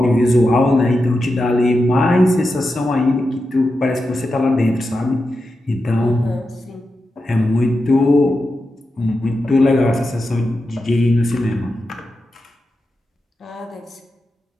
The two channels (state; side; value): normal; both; correlation 0.89